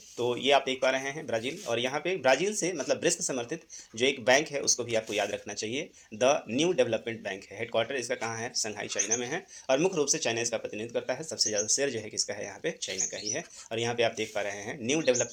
तो ये आप देख पा रहे हैं ब्राज़ील, और यहाँ पे ब्राज़ील से मतलब ब्रिक्स समर्थित जो एक बैंक है उसको भी आपको याद रखना चाहिए, द न्यू डेवलपमेंट बैंक है। हेडक्वार्टर इसका कहाँ है, शंघाई चाइना में है, और मुख्य रूप से चाइना इसका प्रतिनिधित्व करता है। सबसे ज़्यादा शेयर जो है किसका है, यहाँ पे चाइना का ही है। और यहाँ पे आप देख पा रहे हैं न्यू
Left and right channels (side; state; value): both; identical; correlation 1.00